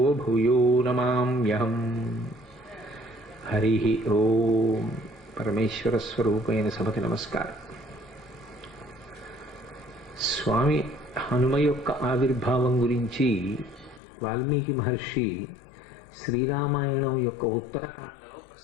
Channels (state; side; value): drops out; right; at 14.0 s